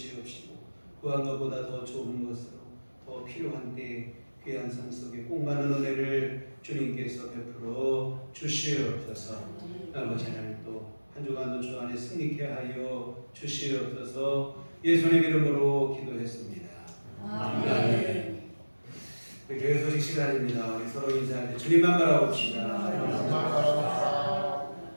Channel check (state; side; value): inverted; both; correlation -1.00